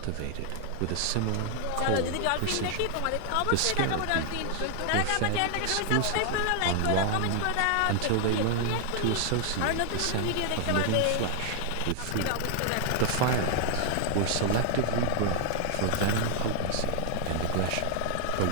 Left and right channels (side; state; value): both; different; correlation 0.00